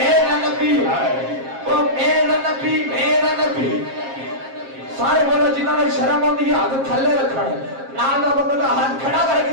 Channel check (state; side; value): late; left; 7.5 ms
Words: نبی ہے، وہ میرا نبی میرا نبی. سارے بولو جنہوں نے شرم ہوندی ہاتھ تھلے رکھن نال دا بندہ کا ہاتھ کھڑا